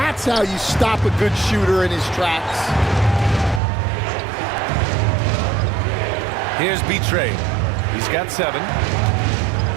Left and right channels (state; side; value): drops out; left; at 3.6 s